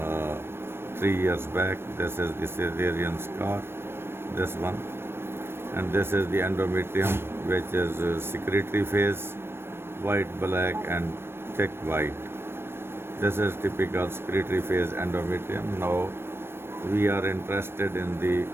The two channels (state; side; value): late; left; 0.12 ms